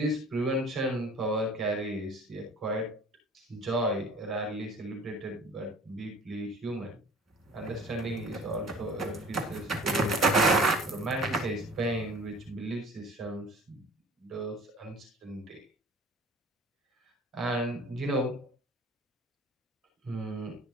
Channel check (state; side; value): normal; both; correlation 0.46